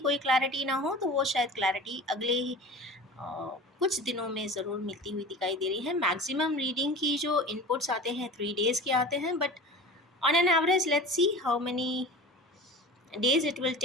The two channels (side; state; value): both; normal; correlation 0.36